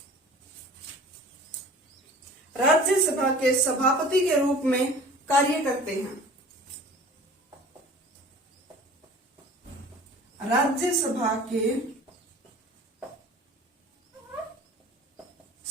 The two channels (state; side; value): normal; both; correlation 0.44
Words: राज्यसभा के सभापति के रूप में कार्य करते हैं। राज्यसभा के